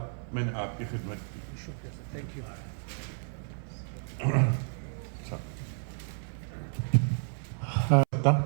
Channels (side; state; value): left; silent; 57 dB below the other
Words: میں نے آپ کی خدمت کی۔ شکریہ سر، تھینک یو۔